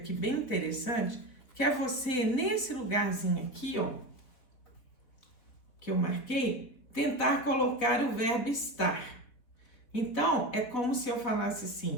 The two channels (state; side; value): late; right; 4.3 ms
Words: bem interessante, que é você, nesse lugarzinho aqui, ó, que eu marquei, tentar colocar o verbo estar. Então, é como se eu falasse